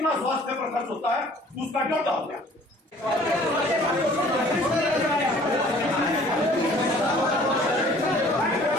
स्वास्थ्य पर खर्च होता है उसका ड्योटा हो गया।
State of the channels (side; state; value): both; normal; correlation 0.53